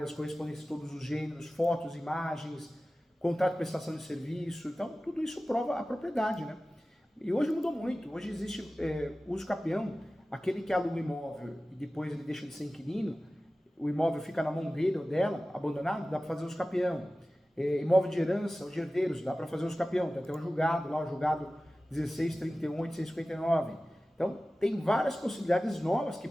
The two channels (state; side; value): normal; both; correlation 0.96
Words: correspondências de todos os gêneros, fotos, imagens, contrato de prestação de serviço. Então, tudo isso prova a propriedade, né? E hoje mudou muito. Hoje existe uso capião, aquele que aluga o imóvel e depois ele deixa de ser inquilino, o imóvel fica na mão dele ou dela, abandonado, dá para fazer uso capião. Imóvel de herança, os herdeiros, dá para fazer uso capião. Tem até um julgado, lá o julgado 16.31.859. Então, tem várias possibilidades novas que